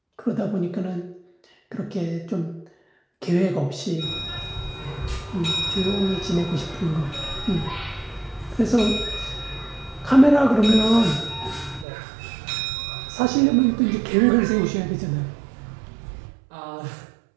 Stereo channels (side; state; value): left; drops out; at 11.9 s